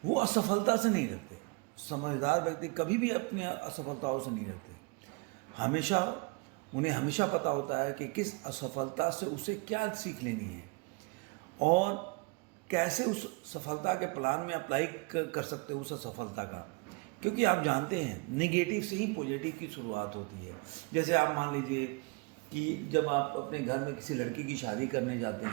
वो असफलता से नहीं डरते। समझदार व्यक्ति कभी भी अपने असफलताओं से नहीं डरते। उन्हें हमेशा पता होता है कि किस असफलता से उसे क्या सीख लेनी है और कैसे उस सफलता के प्लान में अप्लाई कर सकते हो उस असफलता का। क्योंकि आप जानते हैं नेगेटिव से ही पॉजिटिव की शुरुआत होती है। जैसे आप मान लीजिए कि जब आप अपने घर में किसी लड़की की शादी करने जाते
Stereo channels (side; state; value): left; quieter; 28.8 dB